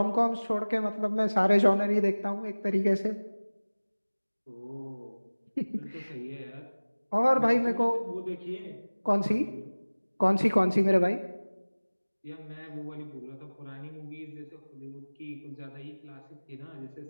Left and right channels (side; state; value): both; inverted; correlation -1.00